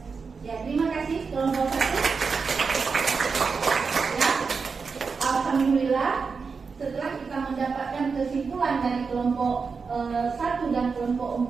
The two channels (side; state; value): left; quieter; 5.1 dB